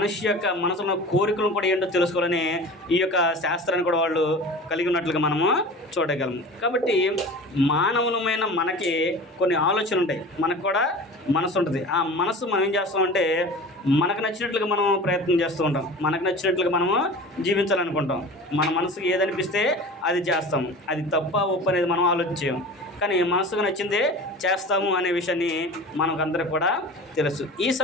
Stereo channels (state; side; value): normal; both; correlation 0.37